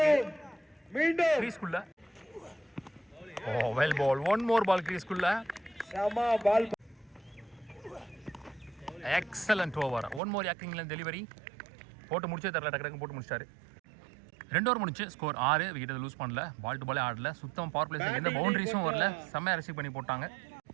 மீண்டும் கிரீஸ்க்குள்ள. Oh, well ball. One more ball கிரீஸ்க்குள்ள. சமா ball. Excellent over. One more யாக்கிங்ல டெலிவரி போட்டு முடிச்சே தரல, டக்கு போட்டு முடிச்சிட்டாரு. 2 ஓவர் முடிச்சு ஸ்கோர் 6. விக்கெட் லூஸ் பண்ணல, பால் டு பாலே ஆடல, சுத்தம் பவர் பிளேஸ்ல எந்த பவுண்டரிஸும் வரல, செம்மையா ரிசீவ் பண்ணி போட்டாங்க.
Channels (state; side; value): drops out; left; at 10.2 s